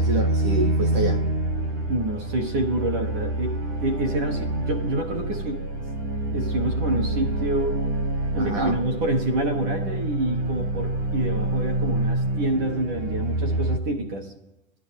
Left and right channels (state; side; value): late; left; 10 ms